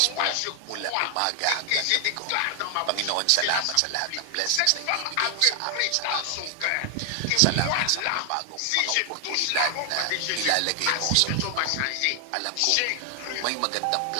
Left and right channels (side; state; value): both; different; correlation 0.00